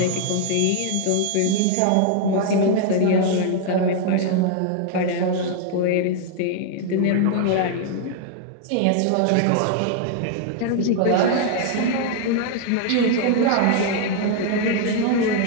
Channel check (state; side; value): different; both; correlation 0.00